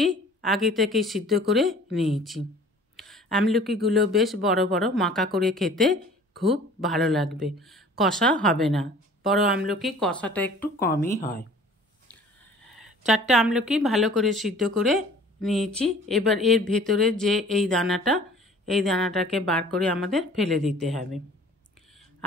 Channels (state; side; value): normal; both; correlation 0.48